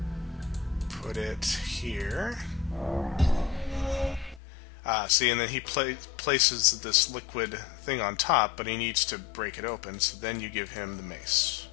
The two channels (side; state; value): right; drops out; at 4.4 s